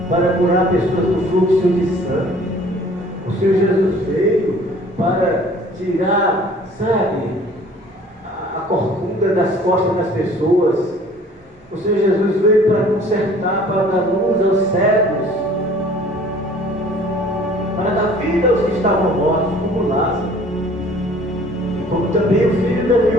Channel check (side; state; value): both; normal; correlation 0.52